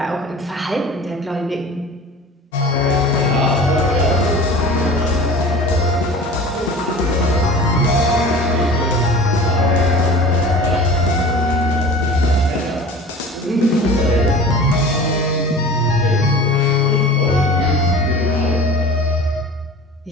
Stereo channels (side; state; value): both; normal; correlation 0.39